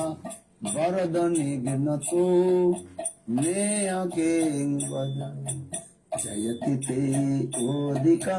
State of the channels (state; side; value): identical; both; correlation 1.00